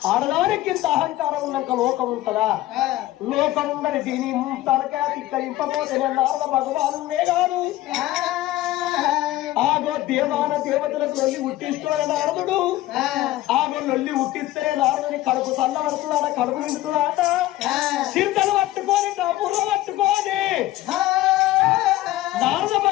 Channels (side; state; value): right; quieter; 16.0 dB